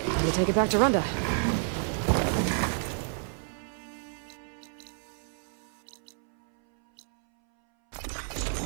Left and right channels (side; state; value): left; silent; 58 dB below the other